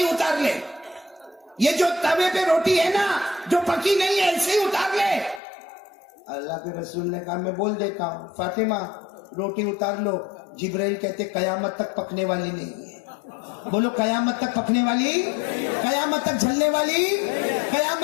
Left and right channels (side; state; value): right; drops out; at 5.4 s